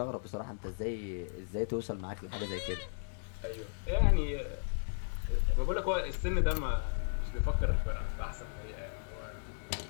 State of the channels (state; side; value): silent; right; digital silence